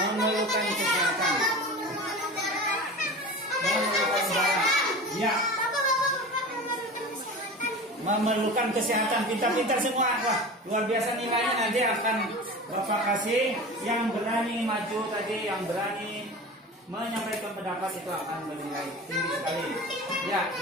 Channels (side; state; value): both; normal; correlation 0.33